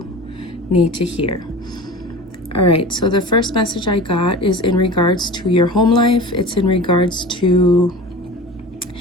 need to hear. All right, so the first message I got is in regards to your home life. It's in regards to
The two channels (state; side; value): normal; both; correlation 0.36